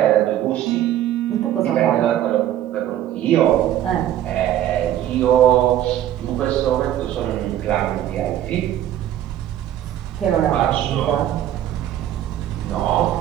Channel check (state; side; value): quieter; left; 11.9 dB